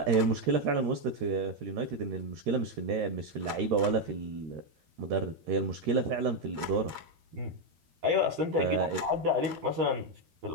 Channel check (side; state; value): left; late; 13 ms